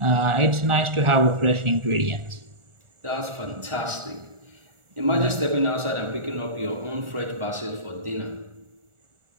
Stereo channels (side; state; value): left; late; 1.4 ms